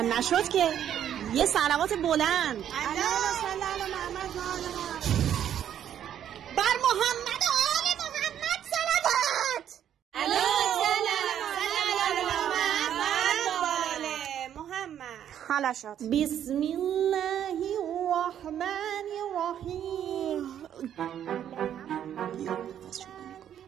نشد که. یه صلوات بلند. اللهم صل علی محمد و آل محمد. بر محمد و آل محمد صلوات. اللهم صل علی محمد و آل محمد. حالا شد. بسم الله الرحمن الرحیم.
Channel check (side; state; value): left; quieter; 10.0 dB